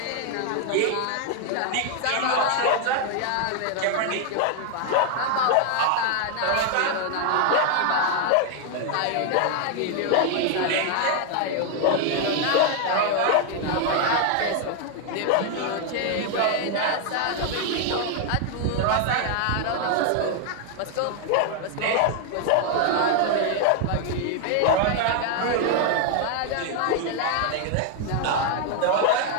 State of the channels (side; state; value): both; different; correlation 0.00